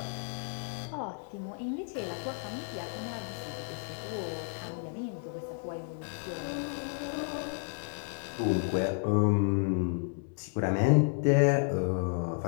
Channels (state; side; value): silent; right; 56 dB below the other